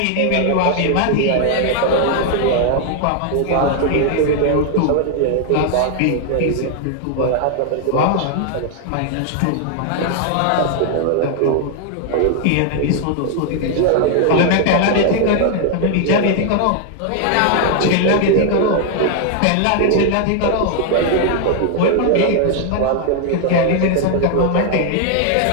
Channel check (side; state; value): both; different; correlation 0.00